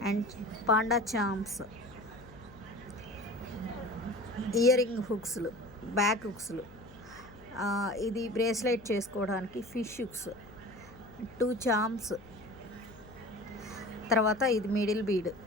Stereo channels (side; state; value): left; noise; hum, 21 dB below the sound